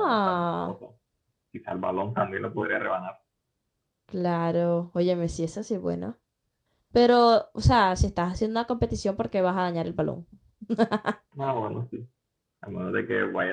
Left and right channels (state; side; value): identical; both; correlation 1.00